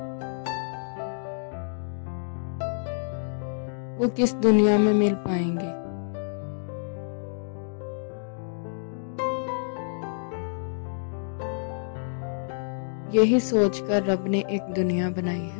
वो किस दुनिया में मिल पाएंगे। यही सोचकर रब ने एक दुनिया बनाई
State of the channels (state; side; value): silent; right; digital silence